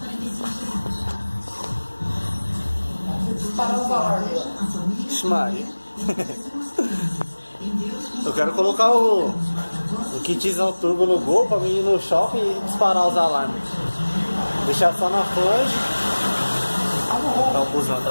Parar o valor. Maria. Eu quero colocar o kitzão turbo no Gol pra mim ir no shopping e disparar os alarmes. Deixar só na flange. Tá o busão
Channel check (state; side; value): inverted; both; correlation -1.00